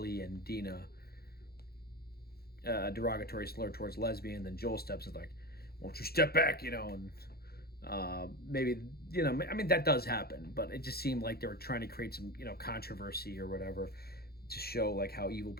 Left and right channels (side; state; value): right; late; 0.45 ms